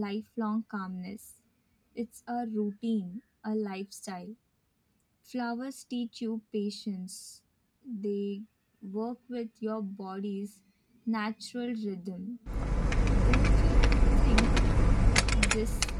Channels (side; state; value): both; identical; correlation 1.00